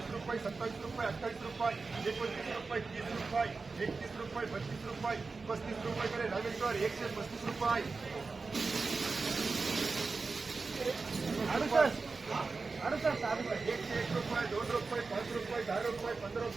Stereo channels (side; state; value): left; quieter; 4.2 dB